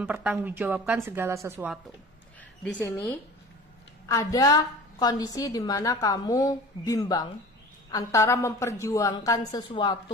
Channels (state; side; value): normal; both; correlation 0.40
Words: segala sesuatu. Di sini ada kondisi di mana kamu bimbang antara memperjuangkan